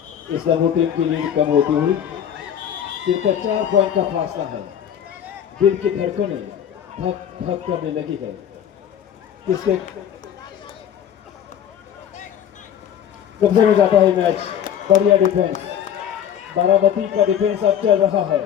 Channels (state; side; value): quieter; right; 9.4 dB